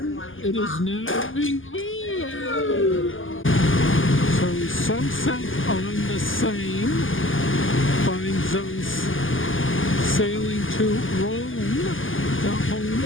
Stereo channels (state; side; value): late; right; 0.58 ms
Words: It is now being... So sunset on the Seine finds us sailing to Rouen, the home